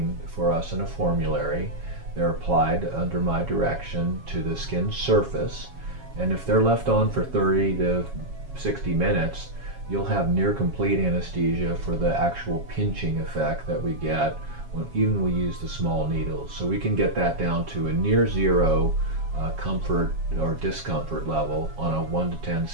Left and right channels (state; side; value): late; left; 7.3 ms